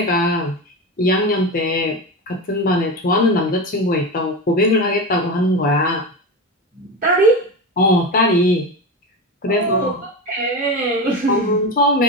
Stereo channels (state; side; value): normal; both; correlation 0.21